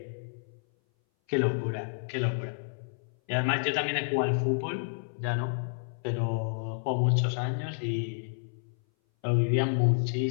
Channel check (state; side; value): silent; right; 58 dB below the other